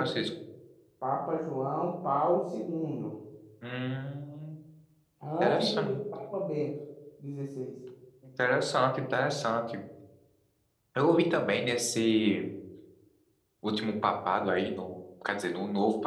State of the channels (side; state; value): both; identical; correlation 1.00